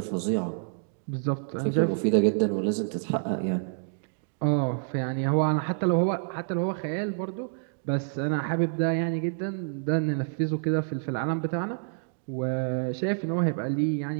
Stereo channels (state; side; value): silent; left; digital silence